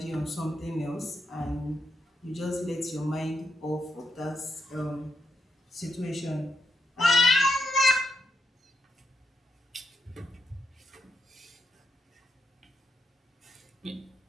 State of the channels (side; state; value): both; normal; correlation 0.82